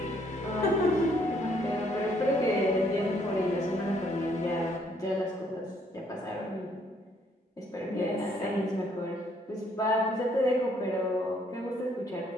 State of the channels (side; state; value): both; normal; correlation 0.67